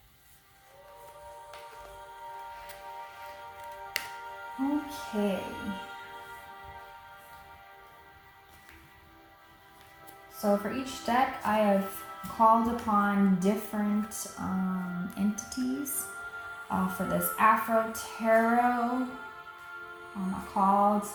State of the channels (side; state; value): both; identical; correlation 1.00